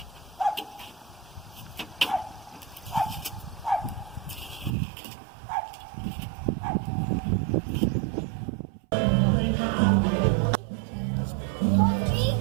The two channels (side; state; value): left; drops out; at 4.8 s